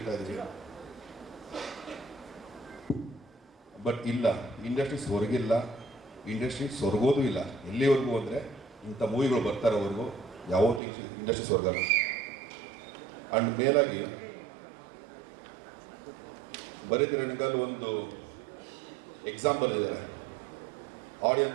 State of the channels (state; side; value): drops out; left; at 10.8 s